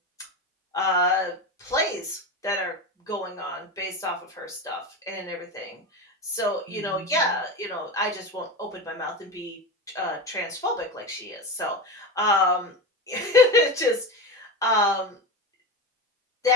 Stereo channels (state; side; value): normal; both; correlation 0.22